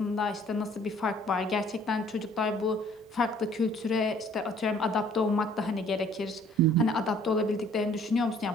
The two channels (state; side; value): normal; both; correlation 0.57